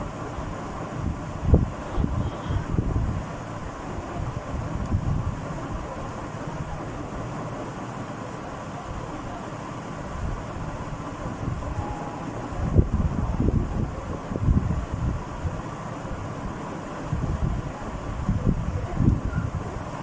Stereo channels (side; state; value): both; identical; correlation 1.00